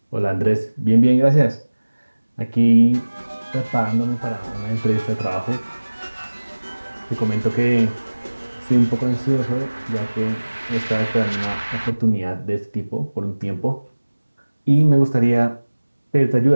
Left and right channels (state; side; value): inverted; both; correlation -1.00